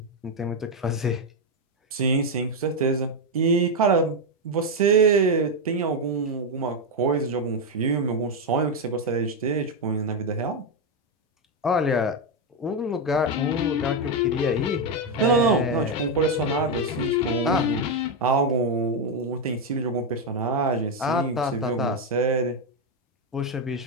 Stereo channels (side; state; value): both; normal; correlation 0.05